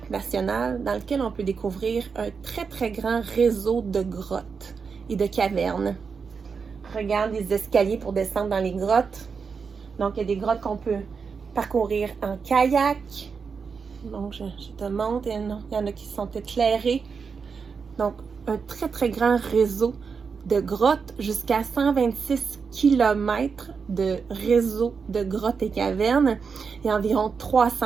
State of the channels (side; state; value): left; quieter; 5.5 dB